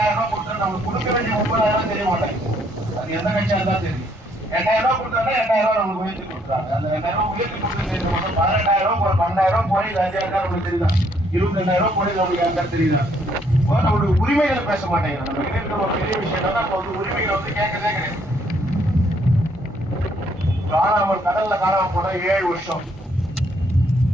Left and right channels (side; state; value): both; normal; correlation 0.68